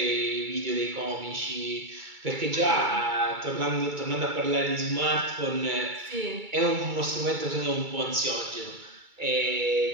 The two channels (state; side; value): late; left; 2.3 ms